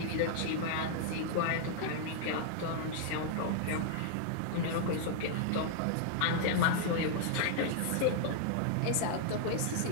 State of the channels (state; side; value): different; both; correlation -0.01